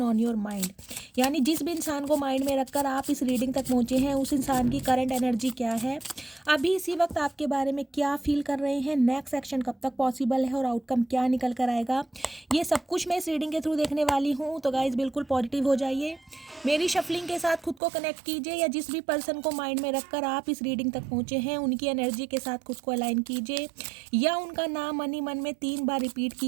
ऑन योर माइंड। यानी जिस भी इंसान को माइंड में रखकर आप इस रीडिंग तक पहुँचे हैं, उस इंसान की करंट एनर्जी क्या है, अभी इसी वक्त आपके बारे में क्या फील कर रहे हैं, नेक्स्ट एक्शन कब तक पॉसिबल है और आउटकम क्या निकल कर आएगा, ये सब कुछ मैं इस रीडिंग के थ्रू देखने वाली हूँ। तो गाइज बिल्कुल पॉजिटिव हो जाइए, मेरी शफलिंग के साथ खुद को कनेक्ट कीजिए, या जिस भी पर्सन को माइंड में रखकर आप इस रीडिंग तक पहुँचे हैं उनकी एनर्जी के साथ खुद को अलाइन कीजिए, या उनका नाम मन ही मन में 3 बार रिपीट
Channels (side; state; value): left; drops out; at 17.8 s